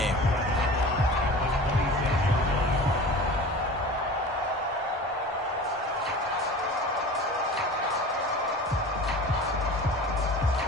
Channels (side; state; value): both; normal; correlation 0.38